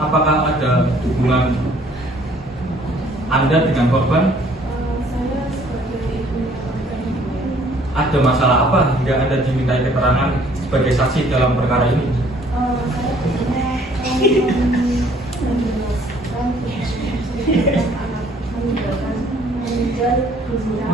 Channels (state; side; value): normal; both; correlation 0.59